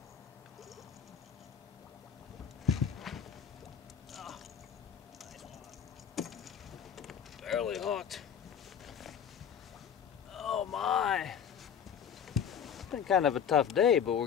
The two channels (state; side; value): quieter; right; 8.0 dB